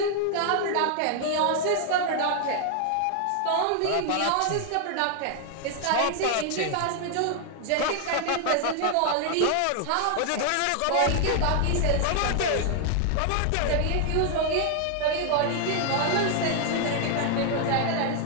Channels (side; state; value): both; different; correlation 0.00